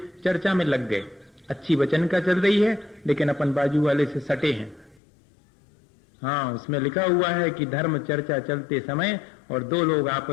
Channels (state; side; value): drops out; right; at 5.0 s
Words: चर्चा में लग गए, अच्छी वचन का चल रही है, लेकिन अपन बाजू वाले से सटे हैं। हाँ, उसमें लिखा हुआ है कि धर्म चर्चा चलते समय और दो लोग